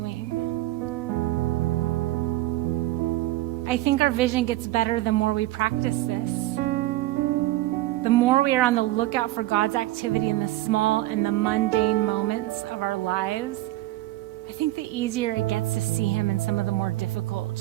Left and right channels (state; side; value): quieter; left; 16.5 dB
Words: I think our vision gets better the more we practice this. The more we are on the lookout for God's activity in the small and the mundane moments of our lives, I think the easier it gets to see him in some of the more difficult,